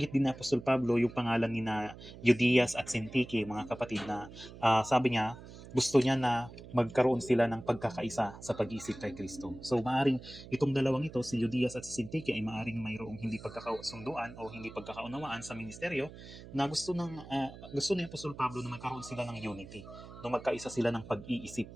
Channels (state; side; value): noise; right; hum, 16 dB below the sound